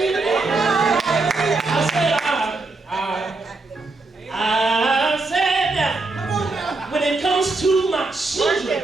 there. I said that when it comes to my children,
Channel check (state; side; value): quieter; left; 3.4 dB